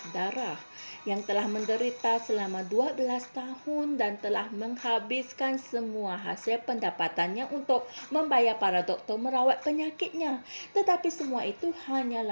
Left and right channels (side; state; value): both; inverted; correlation -1.00